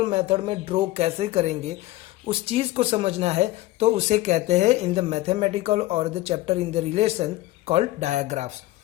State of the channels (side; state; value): right; quieter; 17.3 dB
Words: मेथड में ड्रॉ कैसे करेंगे उस चीज़ को समझना है तो उसे कहते हैं इन द मैथमेटिकल और the chapter in the relation called digraphs.